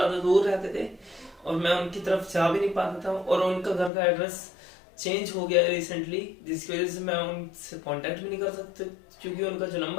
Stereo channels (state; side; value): drops out; right; at 3.9 s